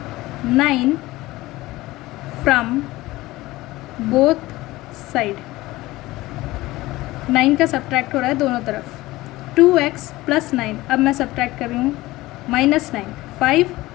9 फ्रॉम बोथ साइड। 9 का सब्ट्रैक्ट हो रहा है दोनों तरफ। 2x + 9, अब मैं सब्ट्रैक्ट कर रही हूँ -9। 5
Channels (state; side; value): quieter; right; 18.6 dB